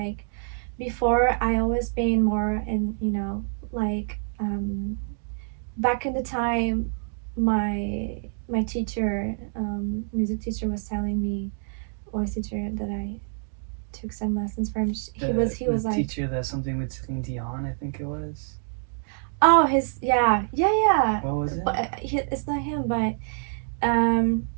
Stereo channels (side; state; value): left; silent; 61 dB below the other